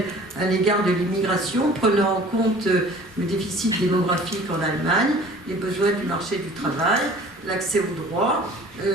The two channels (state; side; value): normal; both; correlation 0.47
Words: à l'égard de l'immigration, prenant en compte le déficit démographique en Allemagne, les besoins du marché du travail, l'accès aux droits,